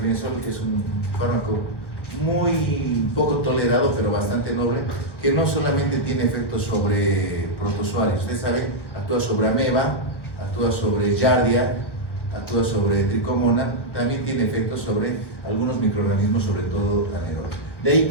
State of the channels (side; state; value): right; late; 1.1 ms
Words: es un fármaco muy poco tolerado, pero bastante noble, que no solamente tiene efectos sobre protozoarios. Ustedes saben, actúa sobre ameba, actúa sobre giardia, actúa sobre tricomona, también tiene efectos sobre algunos microorganismos, sobre todo anaerobios. De ahí